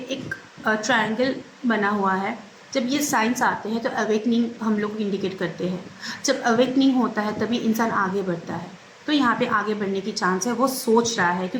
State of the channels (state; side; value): identical; both; correlation 1.00